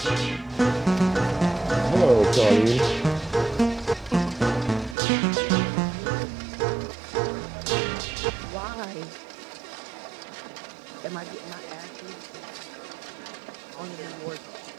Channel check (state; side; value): drops out; left; at 5.0 s